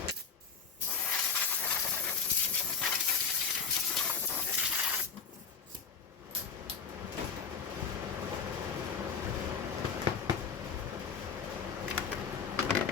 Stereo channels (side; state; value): right; quieter; 6.0 dB